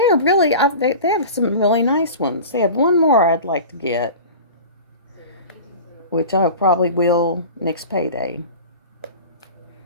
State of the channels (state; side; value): inverted; both; correlation -0.36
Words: really, they have some really nice ones. They have one more I'd like to get, which I probably will next payday.